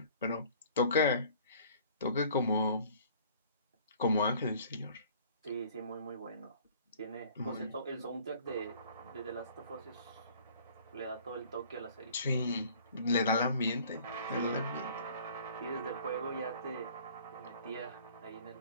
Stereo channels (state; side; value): inverted; both; correlation -0.52